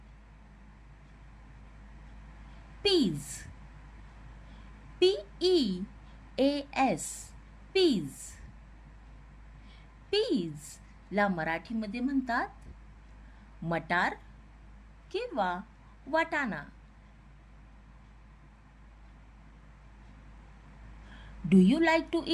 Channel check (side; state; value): both; identical; correlation 1.00